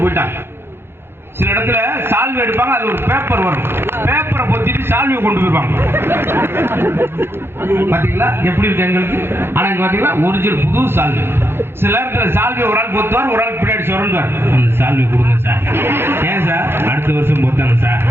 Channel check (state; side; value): late; left; 0.11 ms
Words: போயிட்டாங்க. சில இடத்துல சால்வை எடுப்பாங்க, அது ஒரு பேப்பர் வரும், பேப்பரை பொத்திட்டு சால்வையை கொண்டு போயிருவாங்க. பாத்தீங்களா எப்படி இருக்கு எங்களுக்கு? ஆனா இங்க பாத்தீங்களா ஒரிஜினல் புது சால்வை. சில நேரத்துல சால்வை ஒரு ஆள் பொத்துவார், ஒரு ஆள் பின்னாடி சுரண்டுவார். அந்த சால்வை கொடுங்க சார். ஏன் சார்? அடுத்த வருஷம் பொத்தாங்க சார்.